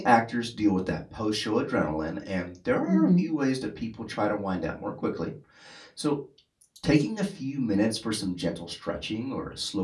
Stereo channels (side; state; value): both; identical; correlation 1.00